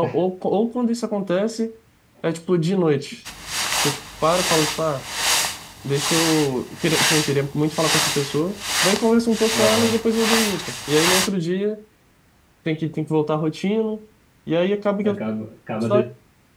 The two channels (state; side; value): identical; both; correlation 1.00